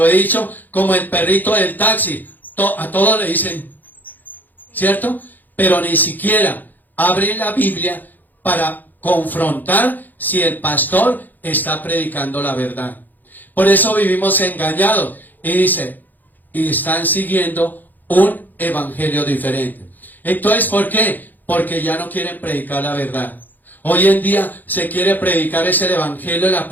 he dicho, como el perrito del taxi. A todos le dicen, ¿cierto? Pero ni siquiera abren la Biblia para confrontar si el pastor está predicando la verdad. Por eso vivimos engañados. Y dice, y están siguiendo un evangelio diferente. Entonces, ¿por qué? Porque ya no quieren predicar la verdad. Hoy en día se quiere predicar ese evangelio de la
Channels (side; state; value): right; late; 0.085 ms